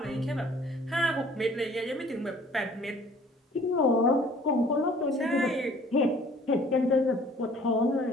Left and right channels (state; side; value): normal; both; correlation 0.54